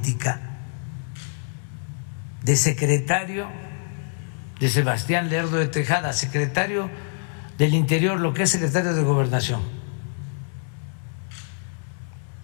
de secretario de Sebastián Lerdo de Tejada, secretario del Interior, lo que es secretario de Gobernación.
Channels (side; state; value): right; silent; digital silence